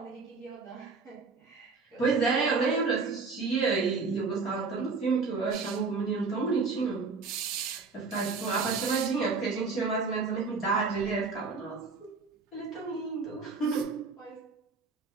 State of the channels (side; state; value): left; quieter; 4.5 dB